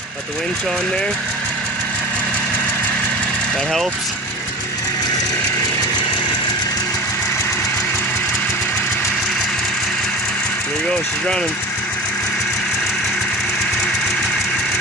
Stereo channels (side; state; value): both; normal; correlation 0.33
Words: Got the winch on there. That helps. There you go, she's running.